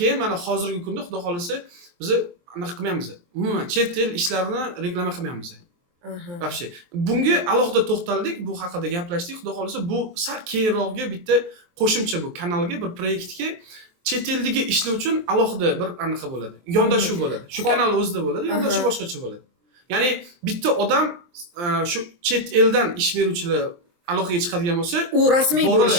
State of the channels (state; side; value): late; left; 23 ms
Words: mana hozirgi kunda xudo xolasa biz anaqa qilmaymiz. Umuman chet el ishlarini reklama qilmaymiz. Вообще. Bunga alohida to'xtaldik, bu haqida gaplashdik. Xudo xolasa bu sal keyinroqga bitta qo'shimcha bu kanalga, bir proyektga chet eldagi ishlar uchun alohida bir anaqa bo'ladi. Yondashuv bo'ladi. Shu kanal o'zida bo'ladi, yondashuv boshqacha bo'ladi. Ya'ni bitta odam shu chet eldan ish beruvchilar aloqaga chiqadigan bo'lsa, u rasmiy bo'lishi